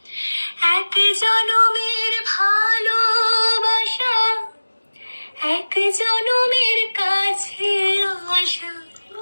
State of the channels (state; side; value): inverted; both; correlation -1.00